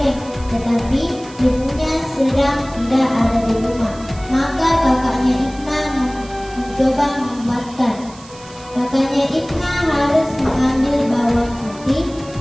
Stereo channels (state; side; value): noise; right; hiss, 21 dB below the sound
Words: tetapi ibunya sedang tidak ada di rumah. Maka kakaknya Ibna mencoba membuatkan. Kakaknya Ibna harus mengambil bawang putih,